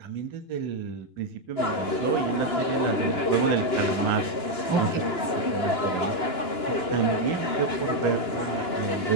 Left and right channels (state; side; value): late; right; 2.9 ms